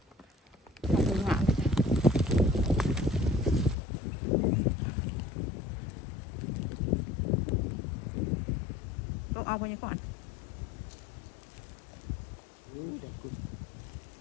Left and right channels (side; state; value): right; drops out; at 3.8 s